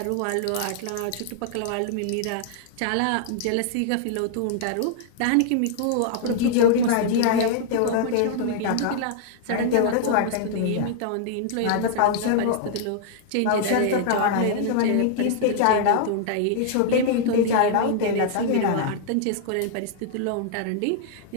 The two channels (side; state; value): both; different; correlation 0.00